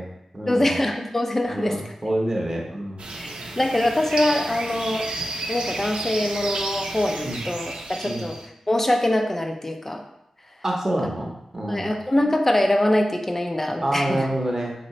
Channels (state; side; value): normal; both; correlation 0.94